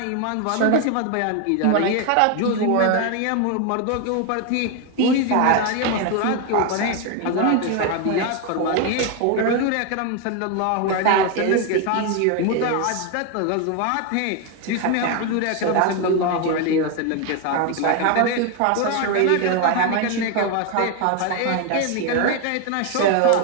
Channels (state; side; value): different; both; correlation 0.01